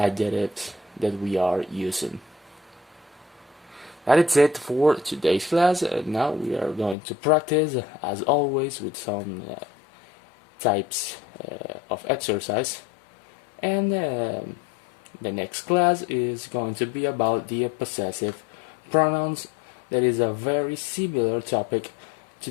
that we are using. That is it for today's class. Now we are going to practice, as always, with some types of exercise. And the next class is going to be about the possessive pronouns. That is a very similar topic to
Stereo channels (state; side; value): drops out; right; at 7.0 s